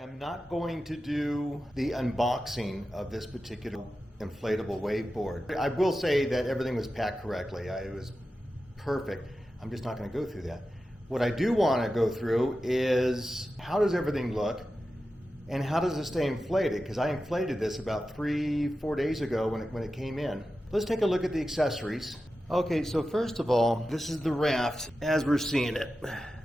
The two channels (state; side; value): normal; both; correlation 0.92